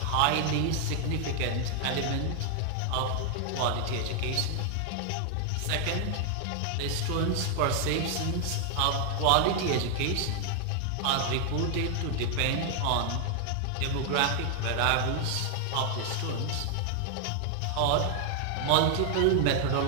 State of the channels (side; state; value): both; different; correlation 0.00